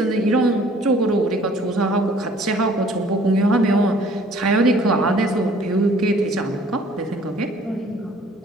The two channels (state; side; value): normal; both; correlation 0.55